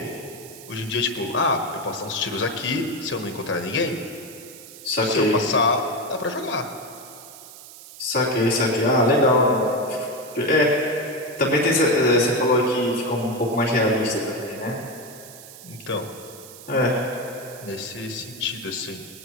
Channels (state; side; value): noise; right; hiss, 17 dB below the sound